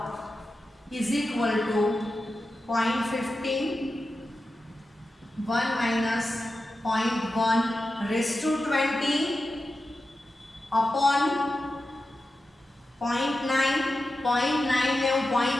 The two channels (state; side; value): normal; both; correlation 0.92